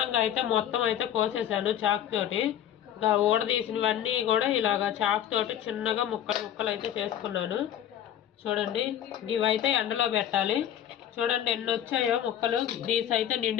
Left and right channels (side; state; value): right; quieter; 10.5 dB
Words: అయితే మొత్తం అయితే కోసేసాను చాక్ తోటి. ఇంకా ఊడదీసినవన్నీ కూడా ఇలాగా చాక్ తోటి చిన్నగా ముక్కలు ముక్కలు అయితే చేసుకున్నాను. చూడండి ఇవైతే ఎండలో పెట్టాలి. చూడండి ఎన్ని వచ్చాయో ముక్కలు. దీస్ అయితే